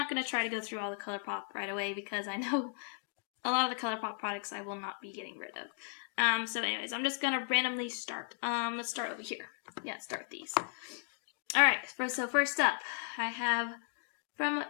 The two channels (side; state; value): right; silent; 54 dB below the other